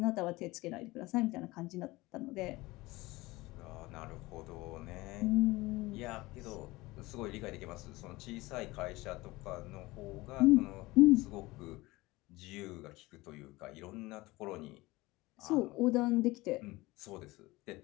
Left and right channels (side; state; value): right; quieter; 20.6 dB